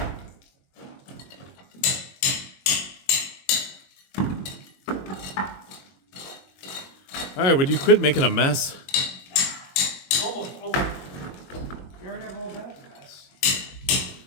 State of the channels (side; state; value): right; late; 22 ms